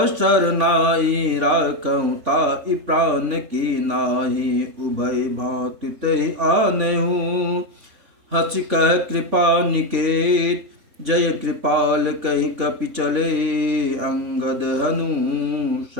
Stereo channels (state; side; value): late; left; 3.5 ms